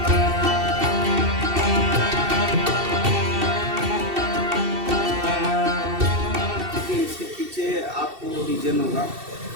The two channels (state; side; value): late; left; 2.7 ms